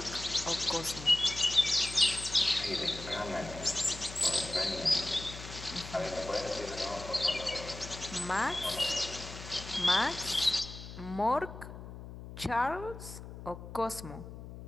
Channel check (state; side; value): noise; left; hum, 12 dB below the sound